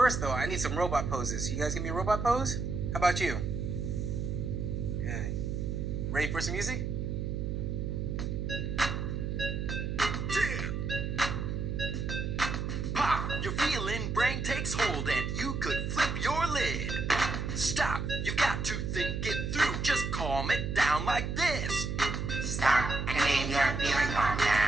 First, though, I need some robot poses. You guys give me a robot pose? How about you? Good. Ready for some music? Pop, you're feeling, brain takes hold, and you could flip your lid. Stop, you've got to think it through. Just calm it down like this. Stop and name your feeling, calm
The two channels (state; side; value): noise; right; hum, 2 dB below the sound